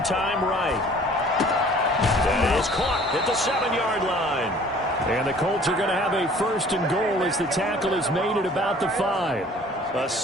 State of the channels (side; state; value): both; normal; correlation 0.51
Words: time right. That is caught at the 7-yard line. And the Colts are going to have a 1st and goal as the tackle is made at about the 5. A